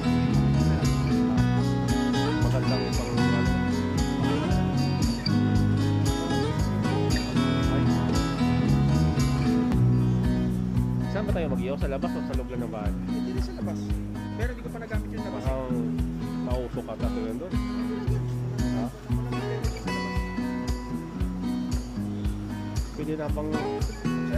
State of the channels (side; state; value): both; identical; correlation 1.00